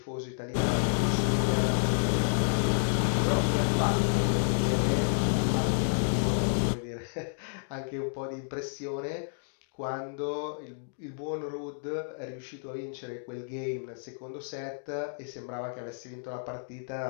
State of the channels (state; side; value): silent; right; digital silence